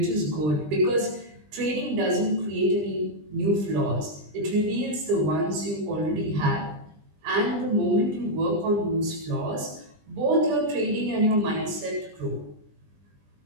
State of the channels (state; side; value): late; left; 20 ms